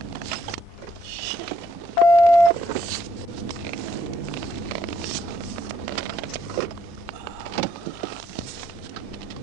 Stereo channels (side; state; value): both; normal; correlation 0.71